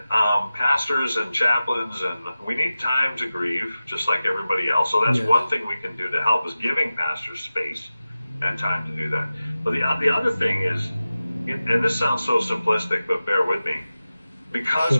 pastors and chaplains, and we need time to grieve just like everybody else. So that's one thing we can do to help is giving pastors space and time to do that. But the other thing is, and this sounds so simplistic, but bear with me, because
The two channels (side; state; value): both; inverted; correlation -0.95